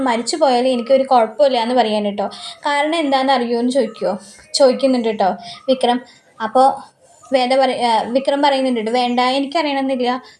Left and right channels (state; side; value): identical; both; correlation 1.00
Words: മരിച്ചു പോയാൽ എനിക്കൊരു കുഴപ്പമില്ല എന്ന് പറയാൻ കേട്ടോ. കാരണം എന്താണെന്ന് അറിയുമോ എന്ന് ചോദിക്കുന്നുണ്ട് കേട്ടോ വിക്രം. അപ്പോൾ വിക്രം പറയുന്നുണ്ട്, വേണ്ട എനിക്കറിയണമെന്നില്ല.